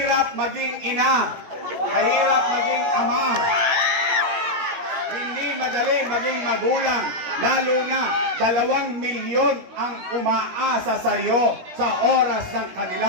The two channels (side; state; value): left; late; 16 ms